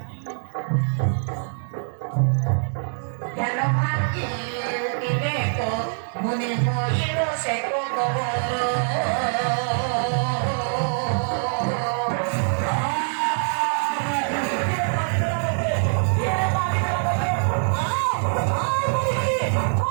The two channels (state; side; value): silent; left; digital silence